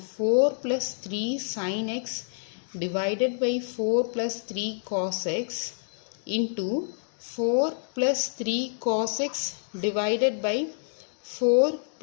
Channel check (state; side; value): silent; right; digital silence